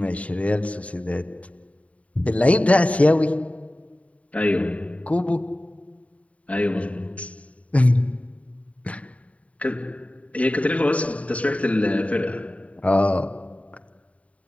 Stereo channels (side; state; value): right; late; 0.066 ms